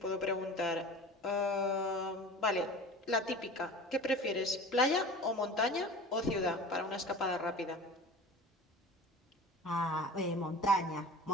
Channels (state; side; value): normal; both; correlation 0.38